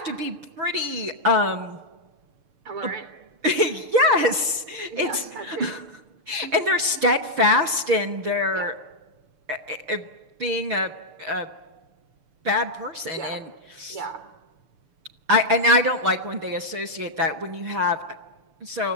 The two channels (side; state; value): left; late; 6.7 ms